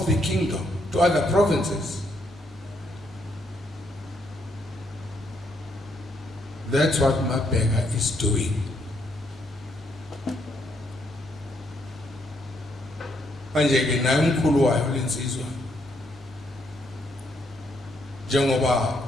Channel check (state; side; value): normal; both; correlation 0.74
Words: the kingdom to other provinces. That's what Mabheka is doing. Manje ke naye umkhulu wayo lensizwa. Njengoba